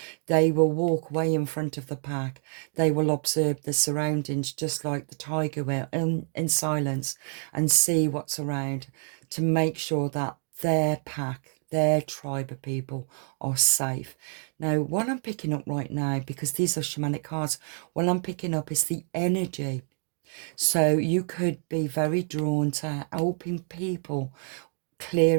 They will walk way in front of the pack. They will observe the surroundings just like the tiger will in silence and see what's around to make sure that their pack, their tribe of people are safe. Now, what I'm picking up right now, because these are shamanic cards, what I'm picking up is the energy. So you could be very drawn to helping people,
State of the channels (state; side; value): silent; left; 55 dB below the other